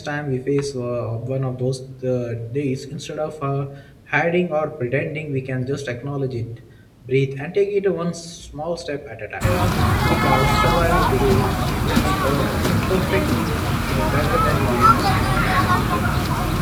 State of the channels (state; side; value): identical; both; correlation 1.00